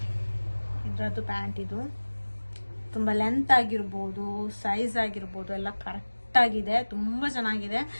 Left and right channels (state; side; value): inverted; both; correlation -1.00